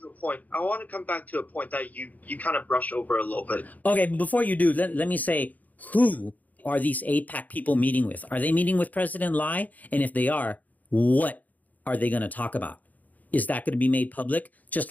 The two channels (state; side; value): late; right; 0.079 ms